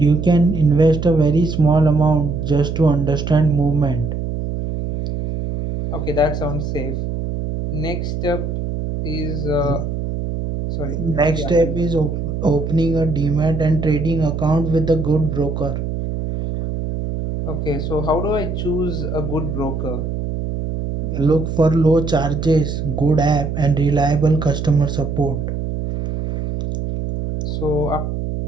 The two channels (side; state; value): right; noise; hum, 4 dB below the sound